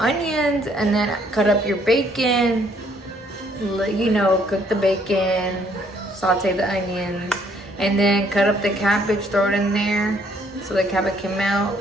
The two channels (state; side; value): normal; both; correlation 0.65